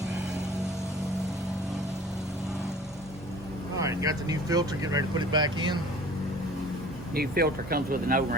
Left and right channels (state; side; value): normal; both; correlation 0.47